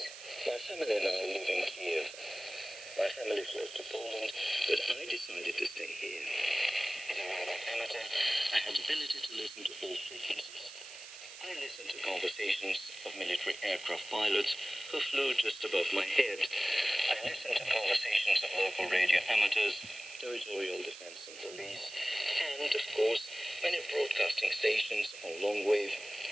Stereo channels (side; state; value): right; noise; hiss, 14 dB below the sound